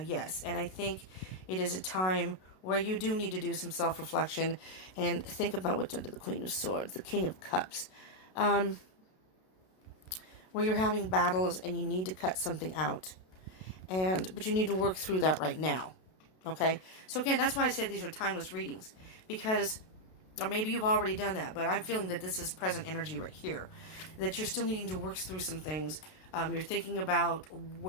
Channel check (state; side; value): late; right; 32 ms